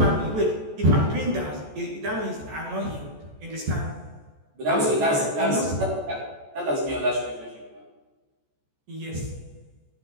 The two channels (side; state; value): left; late; 14 ms